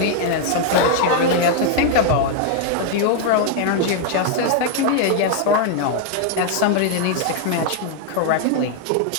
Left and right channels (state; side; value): different; both; correlation 0.00